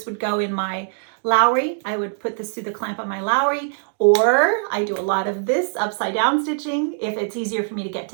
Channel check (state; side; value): silent; left; digital silence